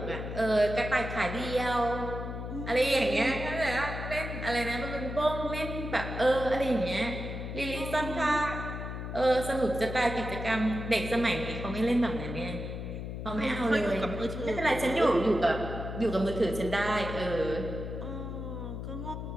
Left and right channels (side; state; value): left; noise; hum, 6 dB below the sound